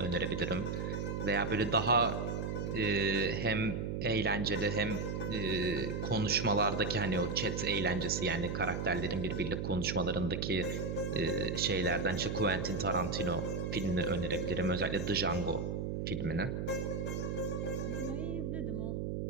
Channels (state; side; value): noise; right; hum, 2 dB below the sound